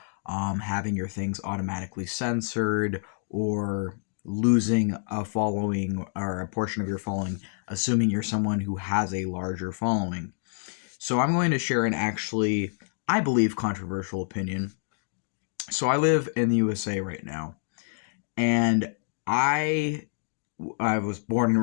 having your things automatically censored, or losing a following or a portion of your following, assuming you're someone who has a larger following. So I'm going to share an actually, I believe, controversial opinion. So I live in the USA right now, and I I was born and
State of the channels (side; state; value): right; silent; digital silence